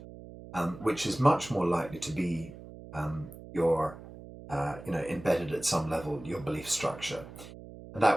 which is much more likely to be your embedded at some level your belief structure. And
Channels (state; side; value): noise; right; hum, 15 dB below the sound